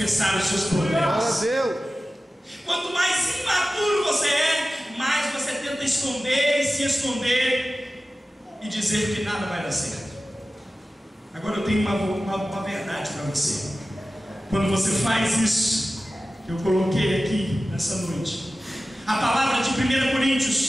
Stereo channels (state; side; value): normal; both; correlation 0.95